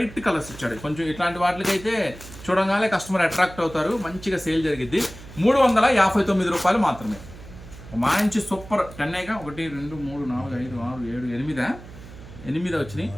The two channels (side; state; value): right; noise; hum, 16 dB below the sound